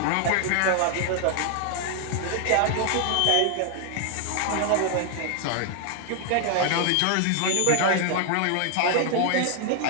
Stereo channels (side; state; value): both; different; correlation 0.00